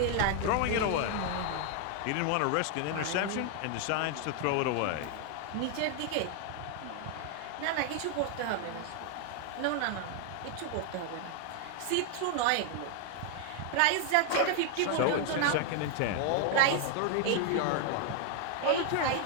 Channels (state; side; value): different; both; correlation 0.00